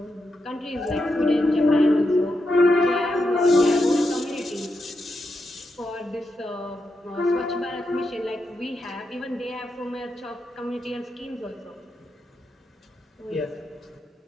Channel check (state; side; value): normal; both; correlation 0.85